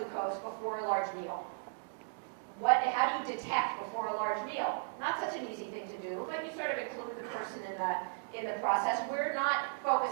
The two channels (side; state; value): left; silent; digital silence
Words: before a large meal. How do you detect before a large meal? Not such an easy thing to do, but you sort of include the person in the process. We're not